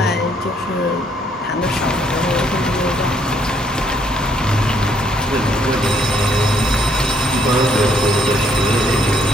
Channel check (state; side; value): normal; both; correlation 0.69